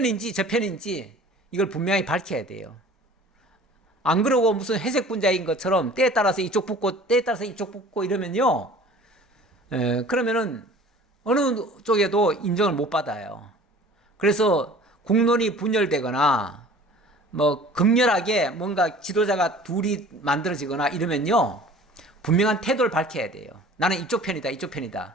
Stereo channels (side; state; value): both; normal; correlation 0.46